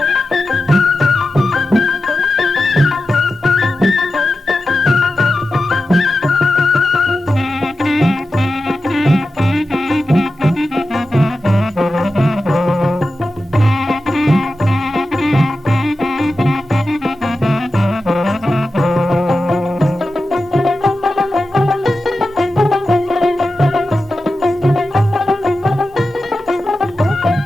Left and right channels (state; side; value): normal; both; correlation 0.92